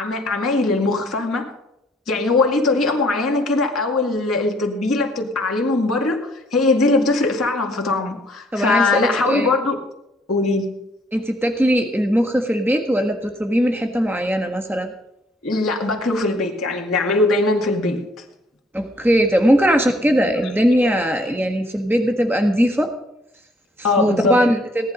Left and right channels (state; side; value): normal; both; correlation 0.63